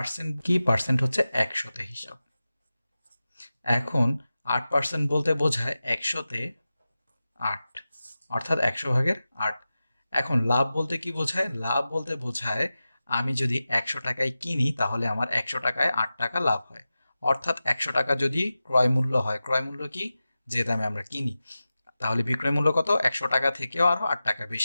কি? পার্সেন্ট হচ্ছে একশোতে হিসাব। এখন 8% বলতে বোঝায় একশোতে 8, অর্থাৎ 100/8। এখন লাভ বলতে কি বোঝায়? লাভ বলতে বোঝায় আমি যদি 100 টাকায় কিনি তাহলে আমার 100 টাকায় 8 টাকা লাভ হয়। অর্থাৎ 100 টাকা যদি ক্রয় মূল্য হয়, ক্রয় মূল্য কি? যে দামে আমরা কিনি, তাহলে বিক্রয় মূল্য কত? 100 টাকা থেকেও আরো 8 টাকা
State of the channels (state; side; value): inverted; both; correlation -0.95